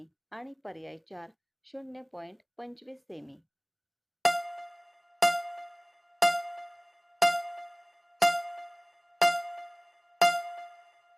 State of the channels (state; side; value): identical; both; correlation 1.00